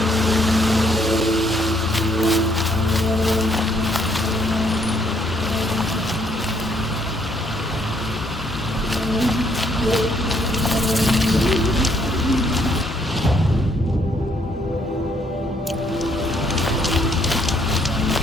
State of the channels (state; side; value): normal; both; correlation 0.69